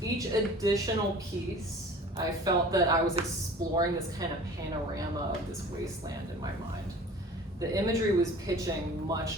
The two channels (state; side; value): normal; both; correlation 0.44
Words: each additional piece, I felt that I was exploring this kind of panorama of this wasteland in my mind. The imagery was pitching